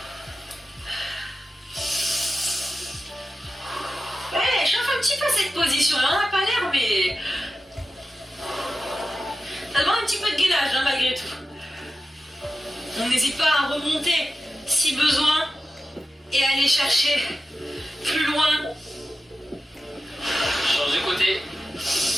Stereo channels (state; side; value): normal; both; correlation 0.93